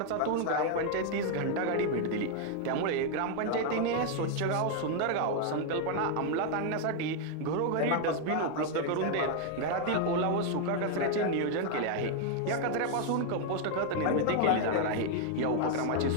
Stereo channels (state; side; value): different; both; correlation 0.00